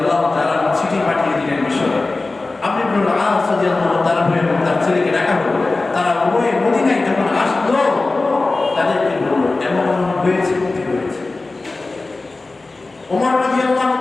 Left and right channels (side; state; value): right; quieter; 3.4 dB